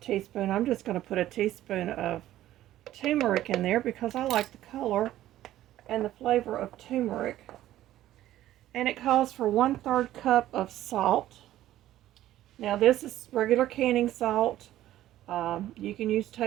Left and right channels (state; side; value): quieter; left; 13.7 dB